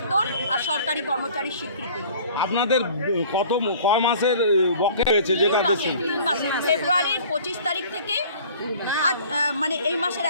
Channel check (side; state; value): both; inverted; correlation -0.49